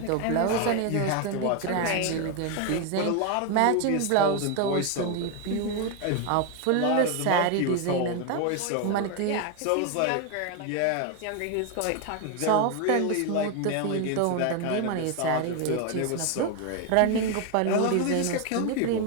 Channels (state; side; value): different; both; correlation 0.01